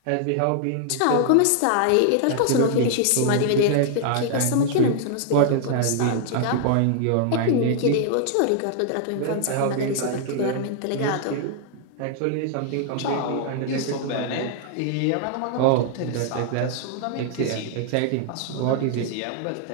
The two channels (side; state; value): both; different; correlation 0.00